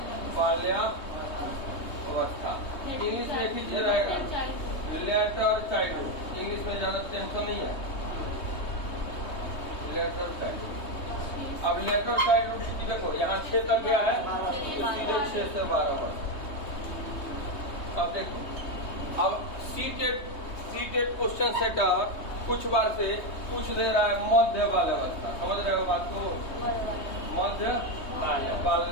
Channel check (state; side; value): late; right; 3.2 ms